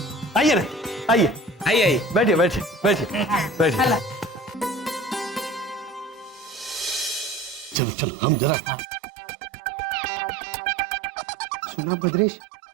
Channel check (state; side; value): drops out; left; at 7.8 s